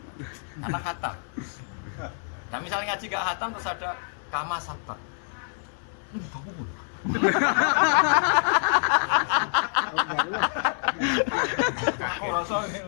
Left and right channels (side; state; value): right; silent; digital silence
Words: Karena khatam. Nah misalnya ngaji gak khatam terus ada kama sabak. Ini baku pun. Aku rasa